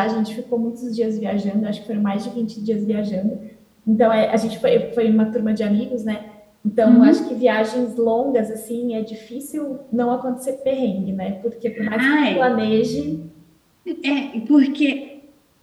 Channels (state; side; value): identical; both; correlation 1.00